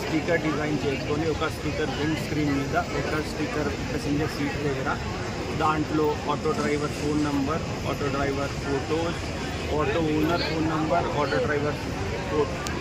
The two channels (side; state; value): both; identical; correlation 1.00